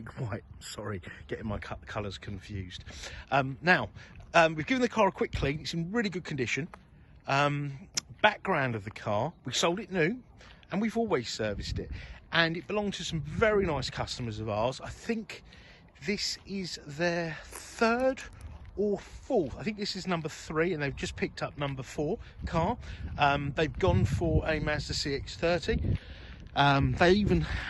White, sorry, getting my colours confused. We've given the car a quick clean. It's in really good condition. Background of the car, we sold it new and we've always serviced it, and it belonged to some very nice customers of ours. I think this is their third or fourth, I think this is number 3, and they've just picked up number 4 car. They've gone for a Mazda CX-3. They even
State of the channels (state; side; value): identical; both; correlation 1.00